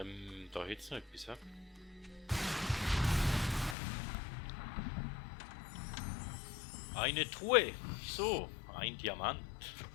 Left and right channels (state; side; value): drops out; right; at 3.8 s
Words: hätte es noch etwas, hä? Eine Truhe. So, ein Diamant.